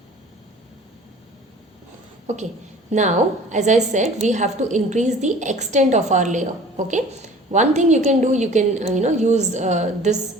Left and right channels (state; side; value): normal; both; correlation 0.47